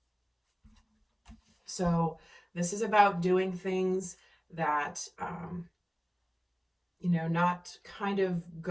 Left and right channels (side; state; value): both; identical; correlation 1.00